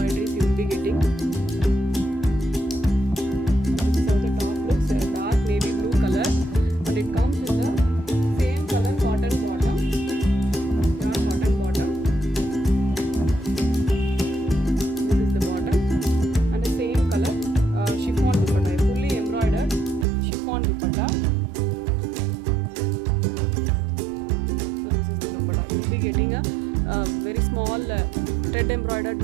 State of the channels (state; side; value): drops out; left; at 20.1 s